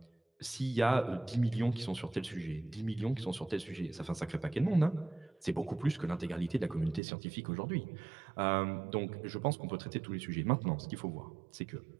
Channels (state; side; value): drops out; left; at 7.0 s